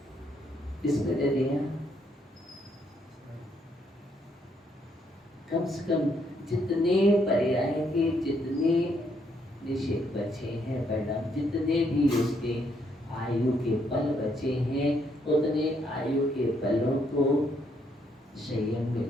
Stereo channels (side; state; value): both; normal; correlation 0.73